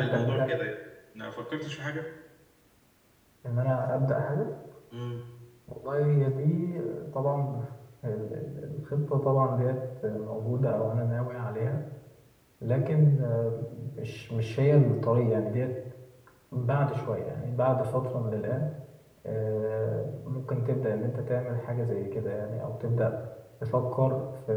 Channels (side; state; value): both; identical; correlation 1.00